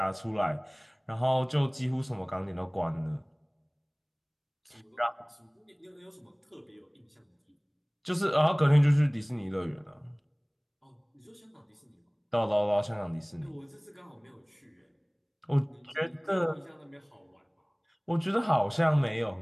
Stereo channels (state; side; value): identical; both; correlation 1.00